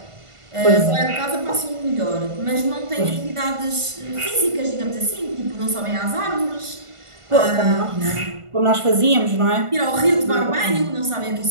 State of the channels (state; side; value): late; left; 1.5 ms